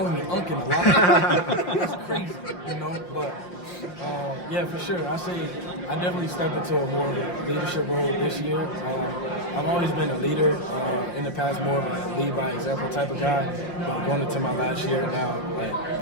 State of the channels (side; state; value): right; late; 5.7 ms